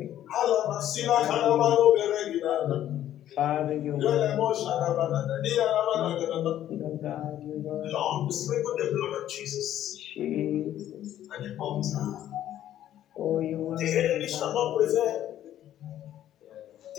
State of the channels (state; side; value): quieter; right; 11.9 dB